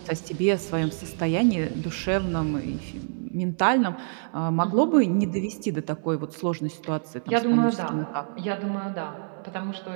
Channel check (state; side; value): silent; left; 61 dB below the other